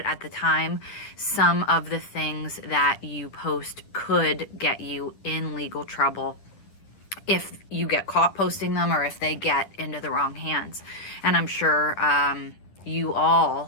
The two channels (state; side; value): late; right; 10 ms